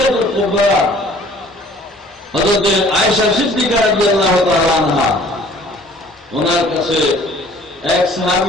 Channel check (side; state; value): both; normal; correlation 0.53